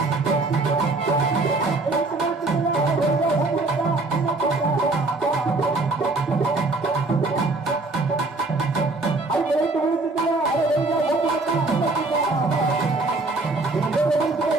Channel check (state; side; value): quieter; left; 3.3 dB